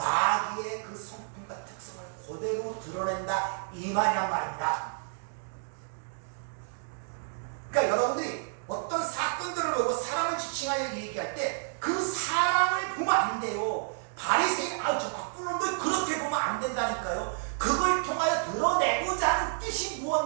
그 성품과 특성을 그대로 드러낸다 이 말이란 말입니다. 그러니까 여러분들이 어떤 사건들을 보고 사람을 지칭하여 얘기할 때 그 사람을 보면 안 돼요. 바리새인 저 나쁜 놈들 그렇게 보면 안 된다니까요. 그걸 통하여 드러내고자 하는 뜻이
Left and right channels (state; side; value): silent; left; digital silence